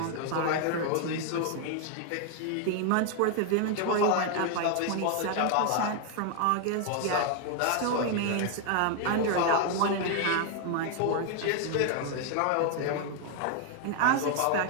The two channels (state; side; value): different; both; correlation 0.00